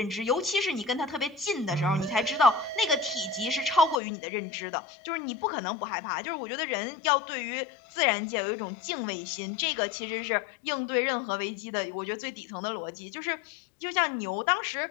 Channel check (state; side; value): drops out; right; at 4.0 s